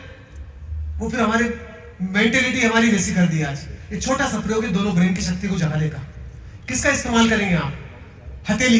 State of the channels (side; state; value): both; identical; correlation 1.00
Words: वो फिर हमारी मेंटेलिटी हमारी वैसी कर दी आज। ये छोटा सा प्रयोग है दोनों ब्रेन की शक्ति को जगाने का। किसका इस्तेमाल करेंगे आप?